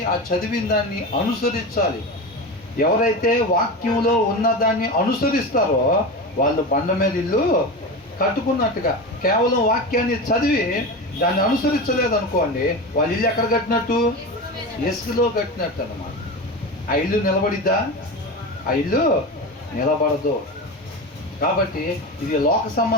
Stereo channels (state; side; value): normal; both; correlation 0.24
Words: ఆ చదివిన దాన్ని అనుసరించాలి. ఎవరైతే వాక్యంలో ఉన్నదాన్ని అనుసరిస్తారో వాళ్ళు బండ మీద ఇల్లు కట్టుకున్నట్టుగా. కేవలం వాక్యాన్ని చదివి దాన్ని అనుసరించలేదు అనుకోండి, వాళ్ళ ఇల్లు ఎక్కడ కట్టినట్టు? ఇసుకలో కట్టినట్టు అన్నమాట. ఆ ఇల్లు నిలబడిద్దా? ఆ ఇల్లు నిలబడదు. కాబట్టి ఇది లోక